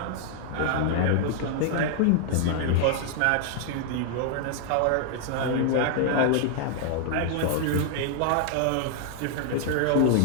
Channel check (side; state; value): both; different; correlation -0.01